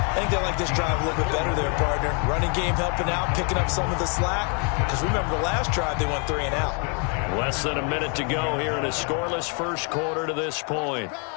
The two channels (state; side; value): quieter; right; 37.6 dB